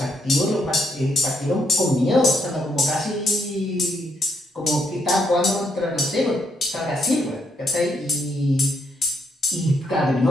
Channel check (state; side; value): normal; both; correlation 0.76